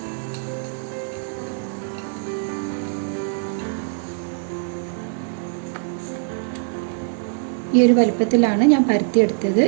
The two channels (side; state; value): left; silent; 64 dB below the other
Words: ഈ ഒരു വലുപ്പത്തിലാണ് ഞാൻ പരത്തിയെടുത്തത്.